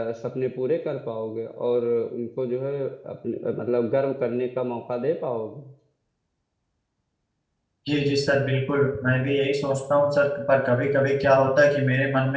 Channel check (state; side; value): identical; both; correlation 1.00